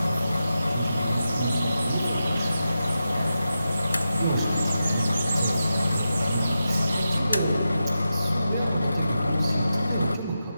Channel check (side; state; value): both; inverted; correlation -0.90